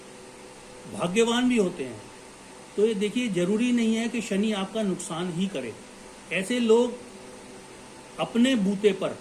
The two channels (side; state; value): both; identical; correlation 1.00